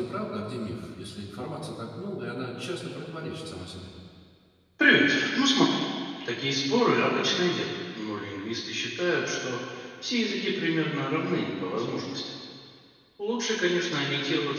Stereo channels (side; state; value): both; identical; correlation 1.00